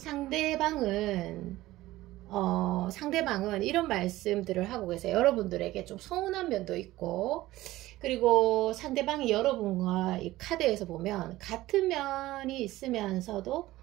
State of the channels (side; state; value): left; quieter; 16.8 dB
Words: 이런 말씀들을 하고 계세요. 여러분들에게 좀 서운한 면도 있고, 그리고 상대방이 여러분과 이 카드에서 보면 같은 면이 있으면서도